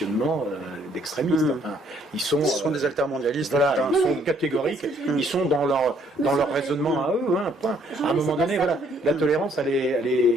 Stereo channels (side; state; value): both; normal; correlation 0.65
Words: d'extrémistes. Enfin, ils sont des altermondialistes. voilà, etc. ils sont Oui, catégoriques. c'est ce que je veux Ils dire. sont dans leur Monsieur raisonnement à eux. Hein, point. Jean-Louis, À un moment c'est pas donné, ça voilà, que je veux dire. la tolérance,